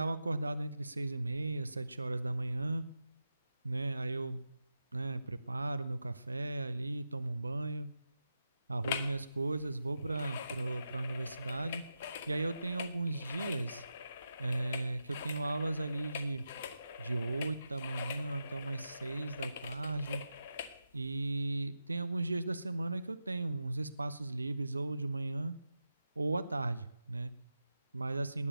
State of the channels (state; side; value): inverted; both; correlation -0.90